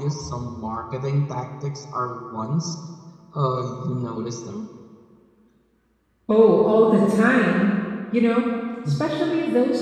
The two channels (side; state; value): both; identical; correlation 1.00